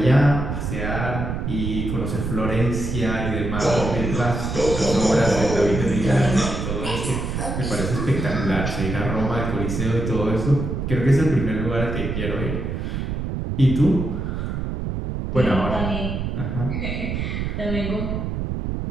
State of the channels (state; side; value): noise; right; rumble, 3 dB below the sound